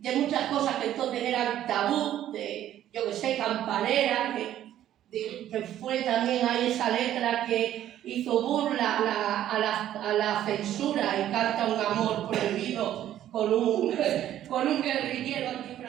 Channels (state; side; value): quieter; left; 11.9 dB